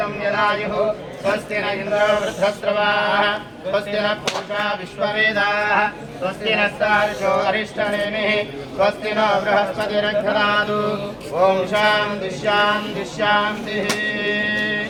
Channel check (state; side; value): identical; both; correlation 1.00